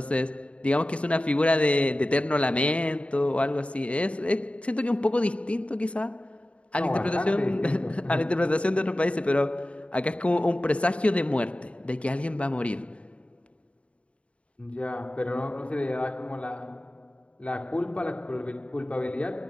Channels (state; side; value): late; right; 0.062 ms